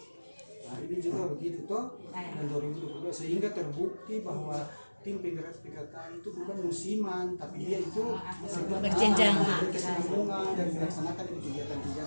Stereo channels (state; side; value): inverted; both; correlation -1.00